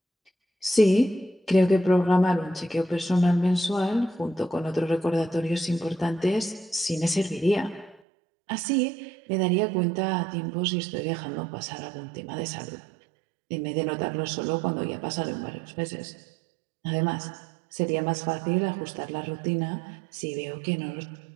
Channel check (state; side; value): drops out; left; at 8.0 s